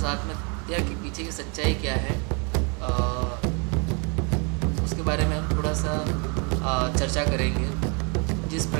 आत्महत्या के पीछे की सच्चाई क्या है, उसके बारे में हम थोड़ा सा चर्चा करेंगे। जिस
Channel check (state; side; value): quieter; left; 34.1 dB